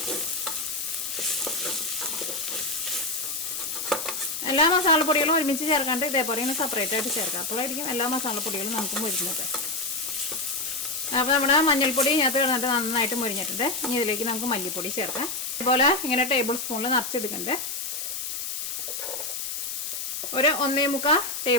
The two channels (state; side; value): noise; left; hiss, 4 dB below the sound